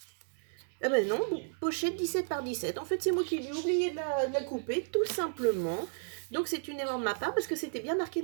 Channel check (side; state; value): left; silent; digital silence